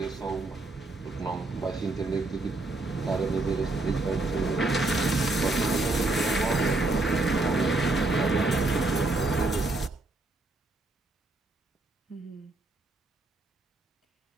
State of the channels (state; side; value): quieter; left; 3.1 dB